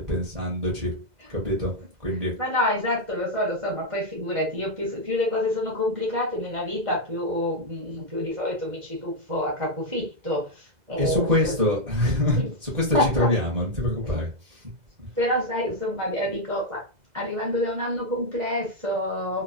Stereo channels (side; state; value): left; late; 2.0 ms